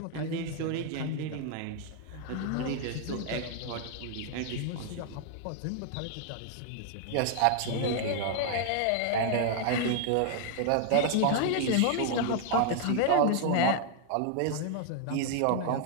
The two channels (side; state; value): both; different; correlation 0.00